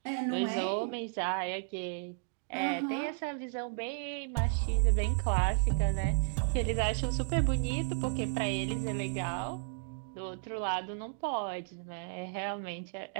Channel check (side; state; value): left; silent; digital silence